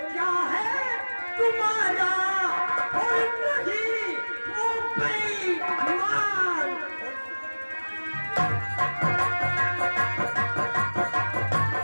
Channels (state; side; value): inverted; both; correlation -1.00